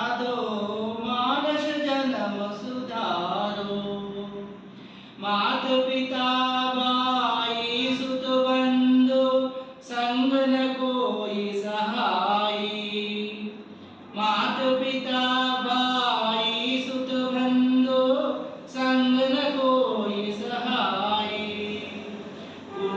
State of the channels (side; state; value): both; identical; correlation 1.00